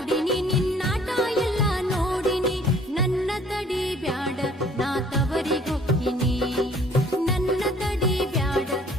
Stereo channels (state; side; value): normal; both; correlation 0.56